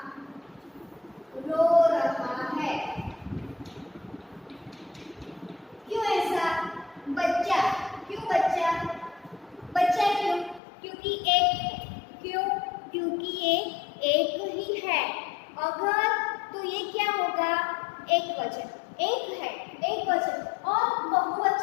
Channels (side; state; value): right; drops out; at 10.6 s